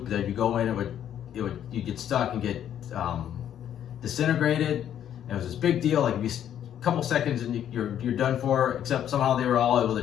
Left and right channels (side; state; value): right; quieter; 10.2 dB